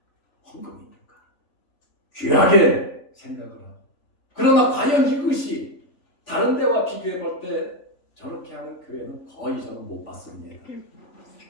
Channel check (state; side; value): late; right; 3.5 ms